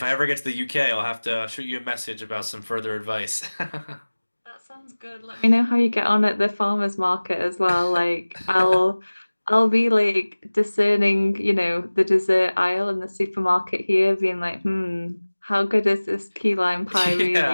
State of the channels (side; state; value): both; inverted; correlation -1.00